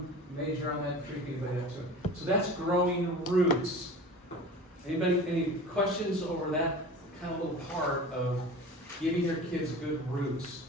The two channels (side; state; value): both; normal; correlation 0.37